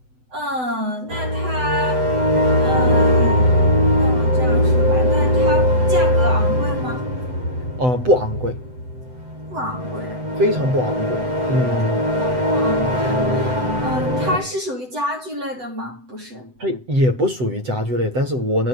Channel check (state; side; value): late; left; 7.9 ms